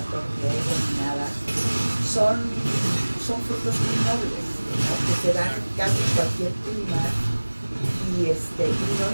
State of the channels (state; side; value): inverted; both; correlation -1.00